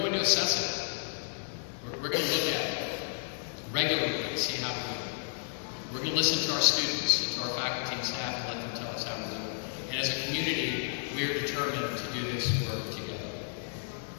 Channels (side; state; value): right; silent; digital silence